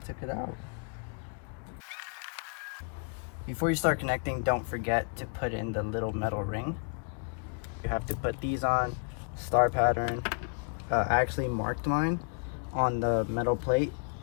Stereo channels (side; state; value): right; quieter; 38.9 dB